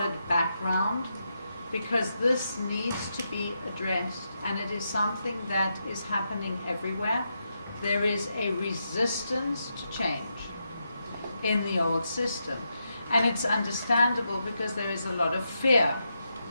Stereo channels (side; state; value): both; inverted; correlation -0.84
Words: background, because this needs to be addressed, and it is something that is happening everywhere. There is a resistance to change in the old system, and it's understandable because there is a lot of fear